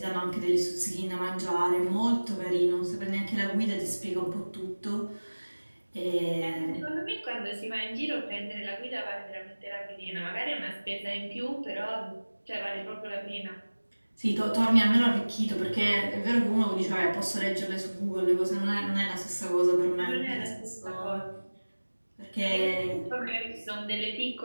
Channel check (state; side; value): inverted; both; correlation -1.00